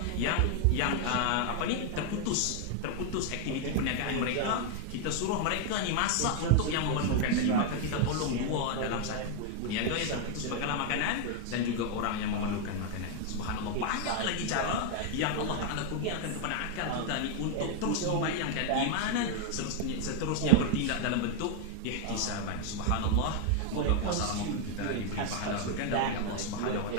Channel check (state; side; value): different; both; correlation 0.01